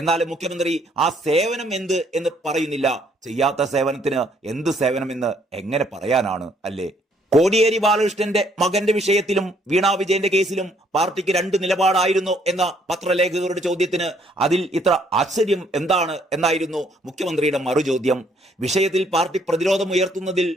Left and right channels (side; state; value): both; normal; correlation 0.66